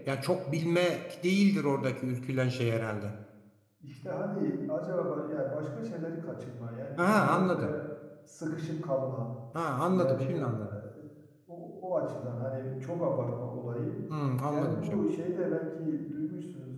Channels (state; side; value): identical; both; correlation 1.00